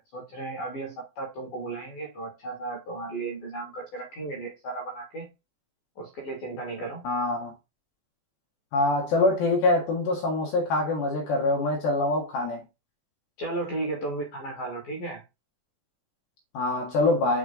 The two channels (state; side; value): late; right; 14 ms